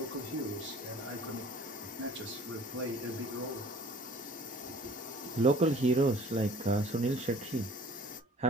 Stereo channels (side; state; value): both; normal; correlation 0.49